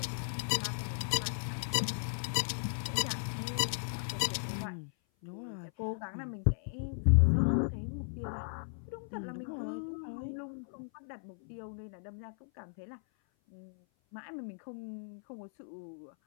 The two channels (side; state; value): right; silent; 54 dB below the other